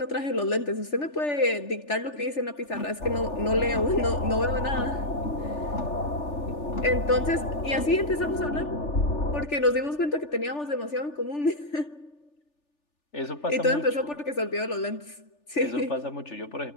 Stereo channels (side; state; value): right; late; 3.4 ms